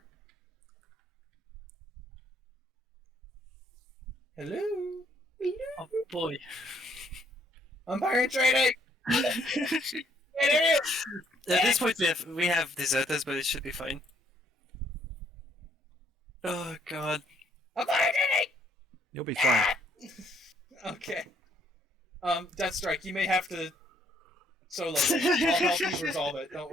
Hello? Hello? Oh boy. Umpiring training! At this point we have deserters, but it should be fine. Oh god. Umpiring training! You'll be fine. Okay. Death Strike, you may have to solo it. I'll help you resolve it, don't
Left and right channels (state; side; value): normal; both; correlation 0.67